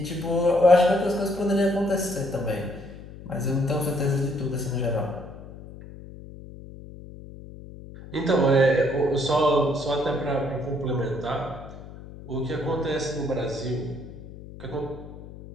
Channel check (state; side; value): noise; left; hum, 15 dB below the sound